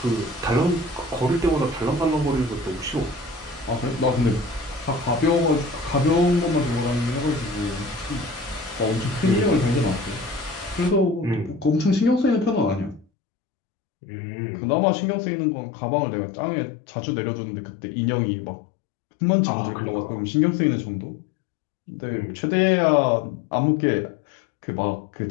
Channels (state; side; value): drops out; right; at 13.1 s